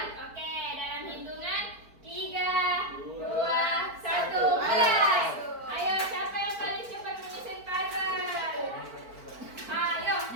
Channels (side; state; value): left; late; 4.5 ms